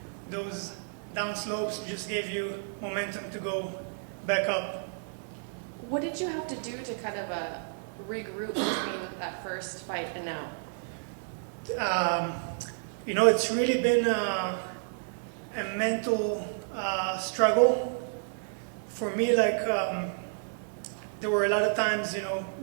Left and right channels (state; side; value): silent; left; digital silence